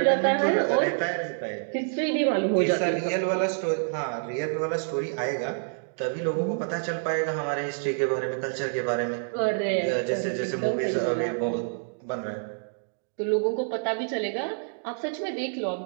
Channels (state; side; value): silent; left; digital silence